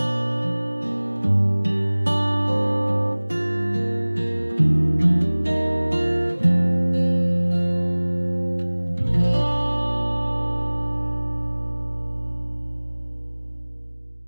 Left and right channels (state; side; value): inverted; both; correlation -1.00